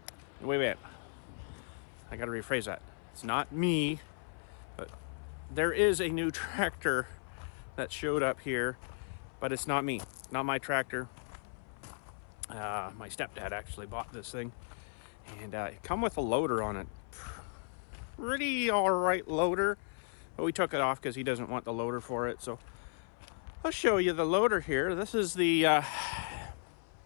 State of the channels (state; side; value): silent; right; 54 dB below the other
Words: Wait. I got to rephrase that. It's not me, but there is a new tractor that showed up here, but it's not me. Not my tractor. My stepdad actually bought this thing, and it come with a loader on it. Pretty alright loader, but we took it off because he doesn't want the loader for it. So I'll show you the loader here. This is the